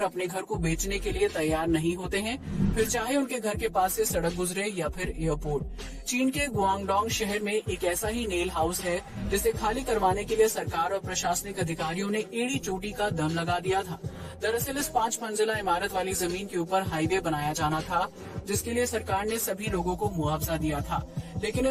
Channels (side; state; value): both; identical; correlation 1.00